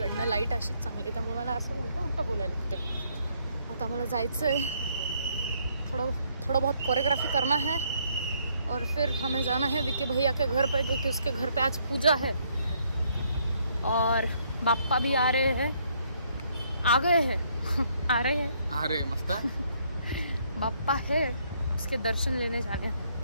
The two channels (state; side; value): inverted; both; correlation -0.69